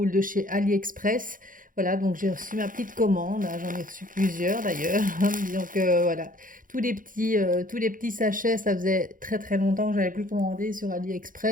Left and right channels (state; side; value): late; left; 0.40 ms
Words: de chez AliExpress. Voilà, donc j'ai reçu ma petite commande, hein, j'en ai reçu plusieurs d'ailleurs. Donc voilà, tous les petits sachets, ça faisait très très longtemps que j'avais plus commandé sur